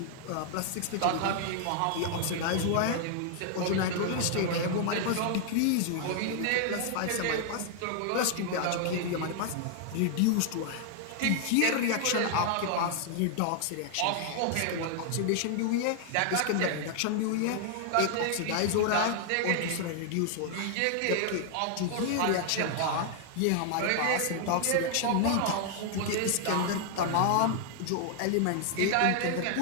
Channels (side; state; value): both; different; correlation 0.00